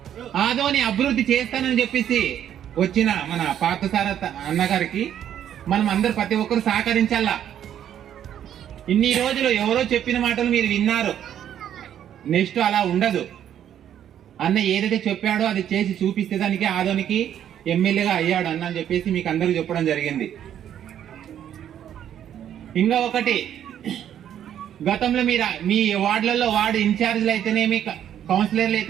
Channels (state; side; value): quieter; left; 10.2 dB